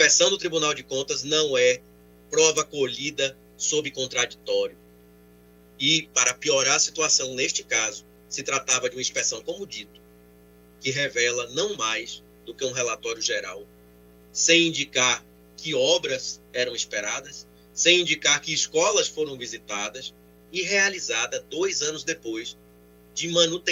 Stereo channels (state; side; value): identical; both; correlation 1.00